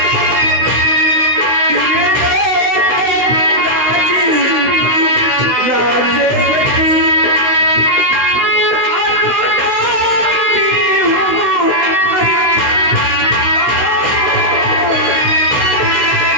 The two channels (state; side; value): late; left; 16 ms